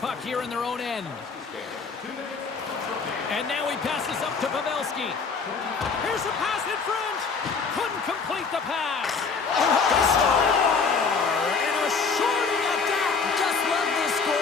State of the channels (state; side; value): quieter; right; 5.0 dB